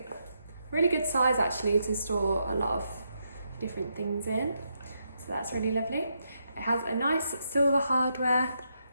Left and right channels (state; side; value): inverted; both; correlation -0.80